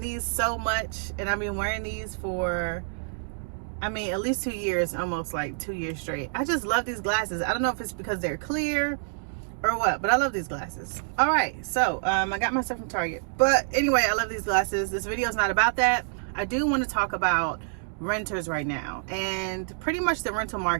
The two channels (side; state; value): left; silent; digital silence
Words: these so much, and I've been wearing these for, I mean, at least 2 years, almost like 2 years straight. I just love these glasses. I don't know if it's because they're clear or what, but I love these glasses. All right, so I got my stuff from Target. But anyway, I love these glasses. This video is not about that. I do want to talk about renters right now and pretty much the rental